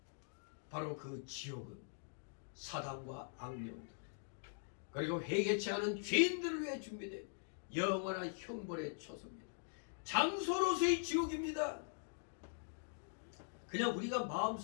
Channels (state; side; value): silent; right; digital silence